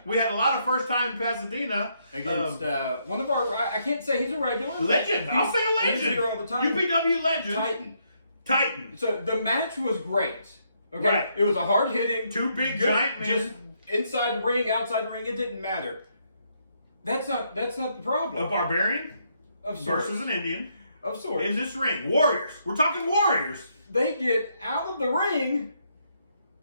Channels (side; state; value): both; inverted; correlation -0.74